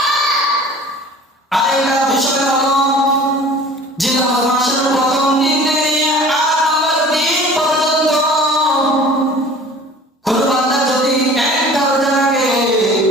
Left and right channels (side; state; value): both; normal; correlation 0.45